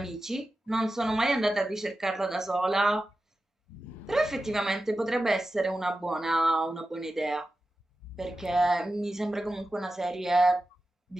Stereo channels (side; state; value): both; normal; correlation 0.93